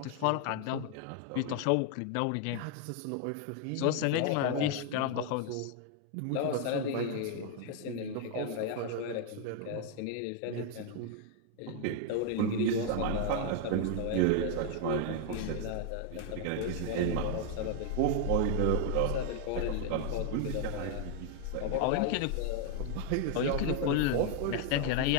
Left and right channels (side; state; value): both; different; correlation 0.00